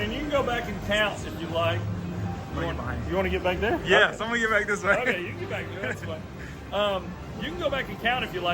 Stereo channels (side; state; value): both; identical; correlation 1.00